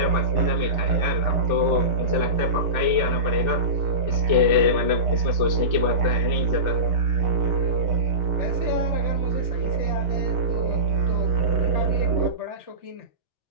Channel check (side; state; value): left; late; 2.7 ms